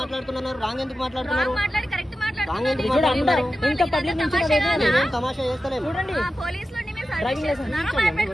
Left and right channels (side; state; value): both; normal; correlation 0.92